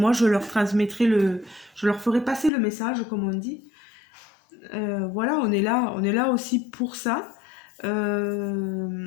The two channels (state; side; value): drops out; right; at 2.5 s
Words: je leur transmettrai je leur ferai passer le message comme on dit. Voilà, on est là aussi pour ça.